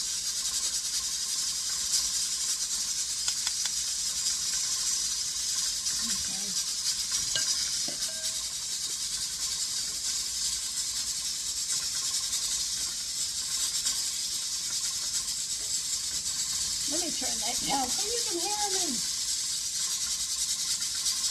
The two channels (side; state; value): both; identical; correlation 1.00